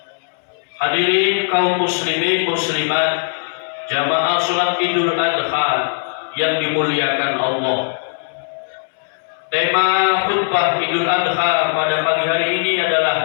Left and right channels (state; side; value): silent; right; 67 dB below the other